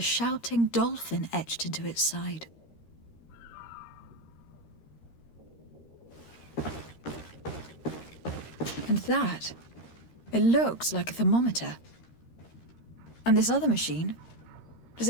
dolphin etched into its side. And that, it looks like a thermometer. And this other machine, does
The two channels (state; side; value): late; right; 13 ms